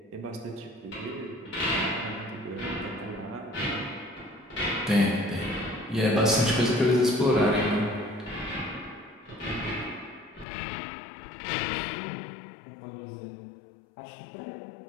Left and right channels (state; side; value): drops out; right; at 10.5 s